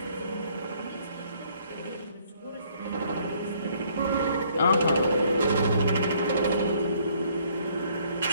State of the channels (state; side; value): inverted; both; correlation -0.64